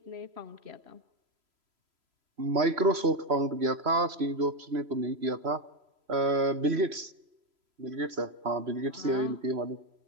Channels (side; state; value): left; late; 3.0 ms